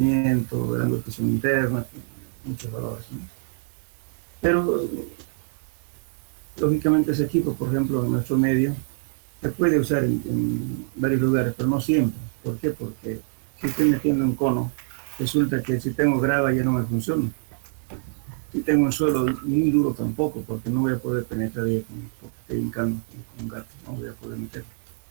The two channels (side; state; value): left; silent; digital silence